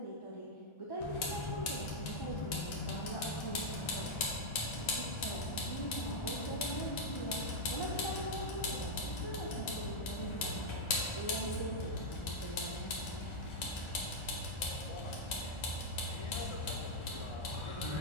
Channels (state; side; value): late; right; 1.4 ms